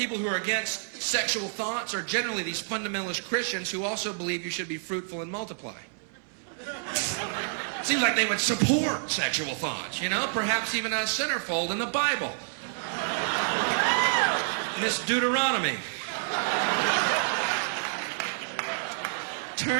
who are against sexual thoughts are generally these fundamentalist Christians who also believe you should be fruitful and multiply. Seems like they would support sexual thoughts, you know? Perhaps even a centerfold in the Bible. Miss Deuteronomy.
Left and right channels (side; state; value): left; silent; 59 dB below the other